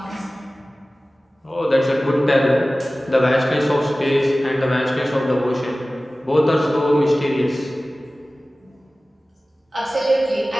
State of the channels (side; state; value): both; normal; correlation 0.97